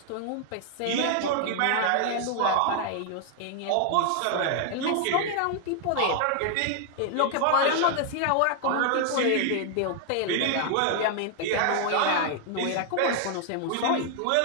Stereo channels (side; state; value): both; different; correlation 0.00